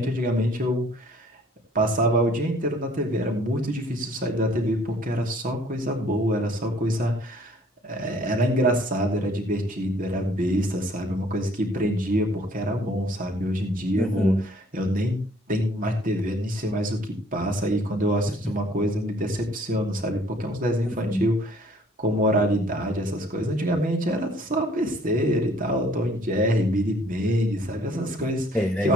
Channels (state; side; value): normal; both; correlation 0.58